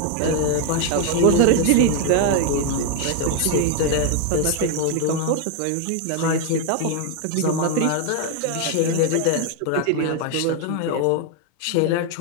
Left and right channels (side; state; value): both; different; correlation 0.01